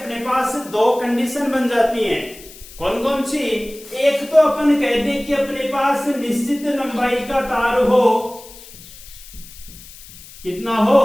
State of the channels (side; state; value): left; noise; hiss, 19 dB below the sound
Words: पास 2 कंडीशन बन जाती हैं। कौन कौन सी? एक तो अपन कह दें कि अपने पास निश्चित लंबाई का तार हो। कितना